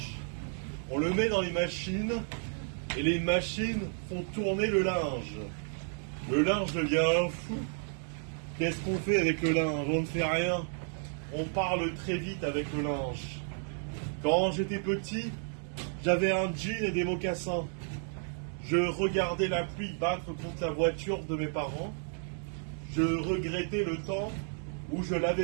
on le met dans les machines et les machines font tourner le linge. Le linge devient fou. Qu'est-ce qu'on fait avec le linge? On ne fait rien. On parle très vite avec le linge. Quand j'étais petit, j'avais un jean et des mocassins. Je regardais la pluie battre contre la voiture de mes parents. Je regrettais le temps où je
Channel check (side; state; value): left; silent; 56 dB below the other